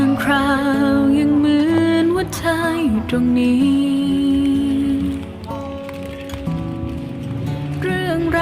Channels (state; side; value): identical; both; correlation 1.00